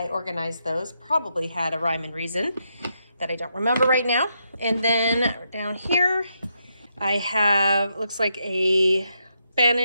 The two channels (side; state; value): both; inverted; correlation -0.80